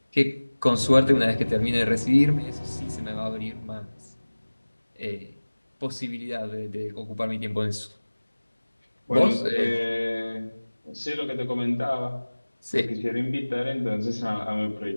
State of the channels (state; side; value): inverted; both; correlation -1.00